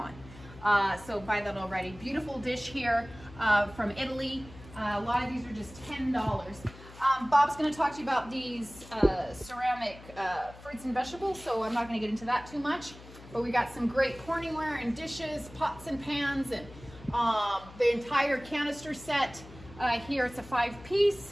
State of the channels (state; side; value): noise; left; hum, 18 dB below the sound